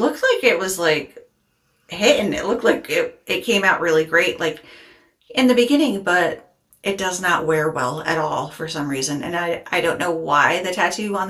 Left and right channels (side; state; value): both; identical; correlation 1.00